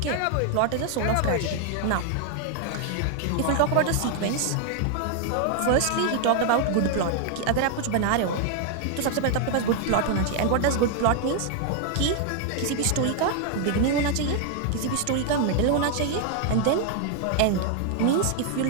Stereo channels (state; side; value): different; both; correlation 0.00